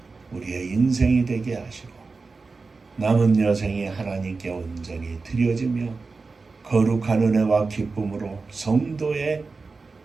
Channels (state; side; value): quieter; left; 4.1 dB